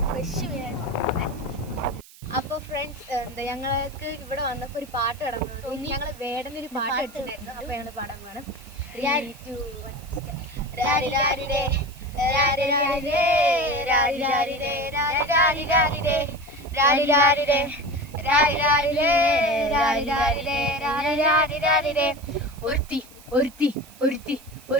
ഫ്രഷ് മീൻ. അപ്പോൾ ഫ്രണ്ട്സ് ഞങ്ങൾക്ക് ഇവിടെ വന്നപ്പോൾ ഒരു പാട്ട് കിടന്നു. ഞങ്ങൾ വേടനൊരു പാട്ട് വെച്ചിട്ടുണ്ടായിരുന്നു. അപ്പോൾ ഞങ്ങൾ പാടാൻ പോകണം.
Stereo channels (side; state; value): right; noise; hiss, 22 dB below the sound